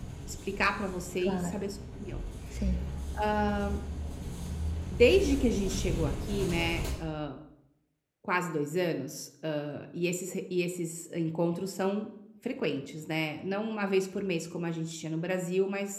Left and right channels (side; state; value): both; identical; correlation 1.00